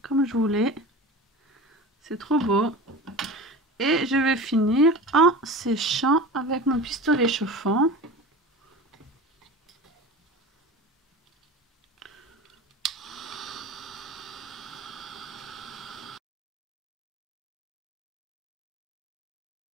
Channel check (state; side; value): normal; both; correlation 0.33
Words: comme je voulais. C'est trop beau. Et je vais finir en séchant avec mon pistolet chauffant.